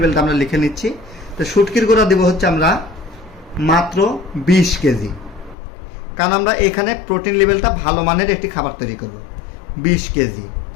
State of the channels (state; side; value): drops out; right; at 5.6 s